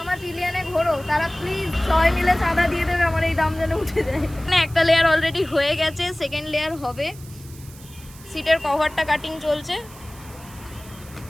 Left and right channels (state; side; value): noise; right; hiss, 21 dB below the sound